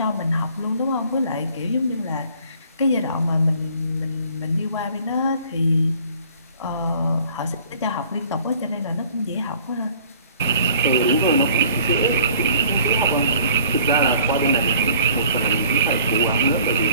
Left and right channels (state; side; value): inverted; both; correlation -0.54